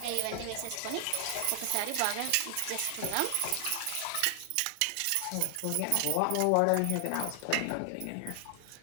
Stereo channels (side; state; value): both; different; correlation 0.00